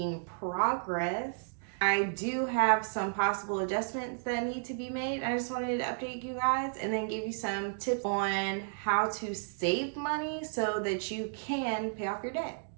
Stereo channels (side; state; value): left; silent; digital silence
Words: progress. I do have some possible adjustments that need to be made. I just wanted to update you guys and then give you some tips on how to save money so that you can pay off your debt.